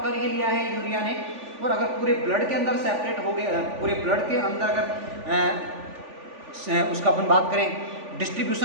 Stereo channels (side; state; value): left; late; 3.5 ms